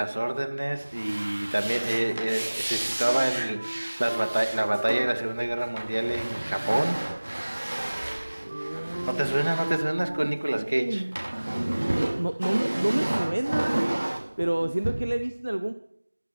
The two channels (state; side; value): inverted; both; correlation -1.00